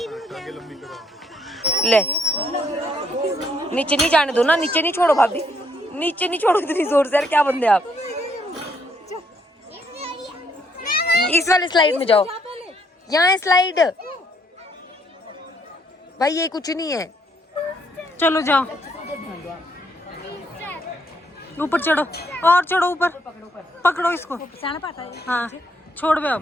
ले, नीचे नहीं जाने दो ना, नीचे नहीं छोड़ो भाभी, नीचे नहीं छोड़ो इतनी जोर से। यार क्या बंदे आप। इस वाले स्लाइड में जाओ, यहाँ है स्लाइड। भाई ये कुछ नहीं है, चलो जाओ। ऊपर चढ़ो और चढ़ो ऊपर, पकड़ो इसको। हाँ छोड़ बे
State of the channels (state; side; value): normal; both; correlation 0.71